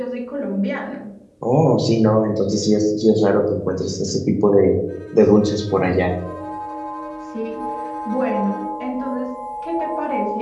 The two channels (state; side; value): identical; both; correlation 1.00